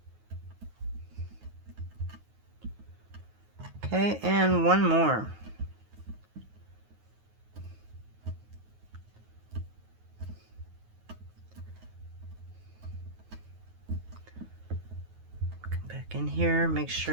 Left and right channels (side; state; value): left; late; 9.4 ms